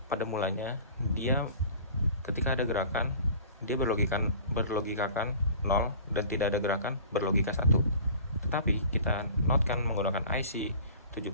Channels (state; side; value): inverted; both; correlation -0.43